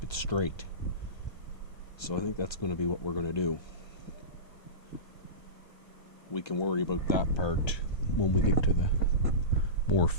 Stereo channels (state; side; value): late; right; 1.3 ms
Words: it straight. So I think that's going to be what we're going to do. We can worry about that part when we get to the more